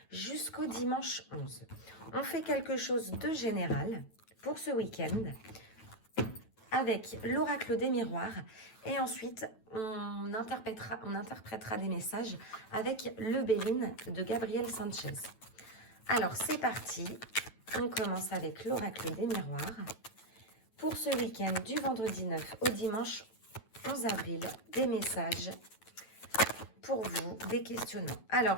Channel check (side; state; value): right; late; 9.1 ms